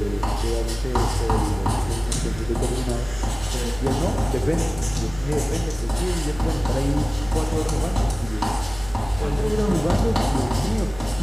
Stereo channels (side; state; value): right; noise; hum, 17 dB below the sound